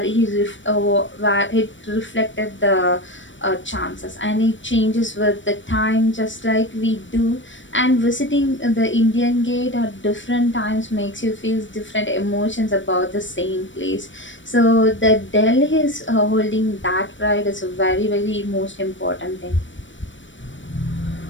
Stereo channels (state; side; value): late; right; 0.55 ms